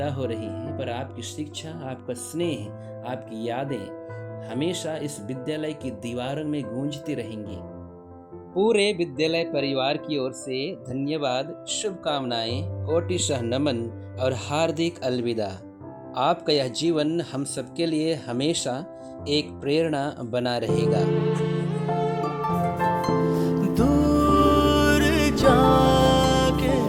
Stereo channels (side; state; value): both; identical; correlation 1.00